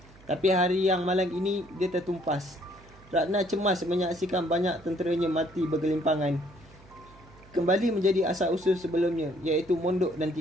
Tapi hari yang malang ini dia tertumpas. Ratna cemas menyaksikan banyak tenteranya mati bergelimpangan. Kembali menjadi asal-usul sebelumnya, iaitu mondok dan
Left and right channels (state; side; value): noise; right; hum, 24 dB below the sound